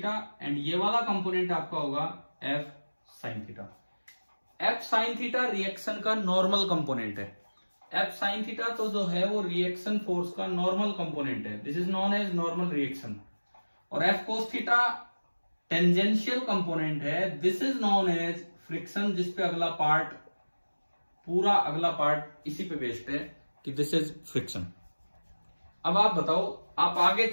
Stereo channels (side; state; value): both; inverted; correlation -1.00